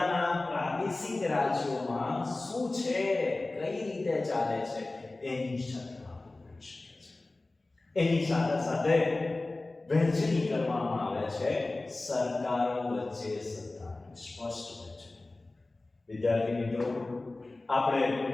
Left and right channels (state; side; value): quieter; right; 3.0 dB